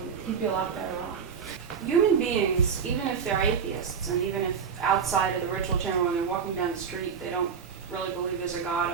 He'd be a lot better off. Human beings, even if they're atheists, and even if outside of the ritual chamber when they're walking down the street, they don't really believe there's a God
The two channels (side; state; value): left; quieter; 6.5 dB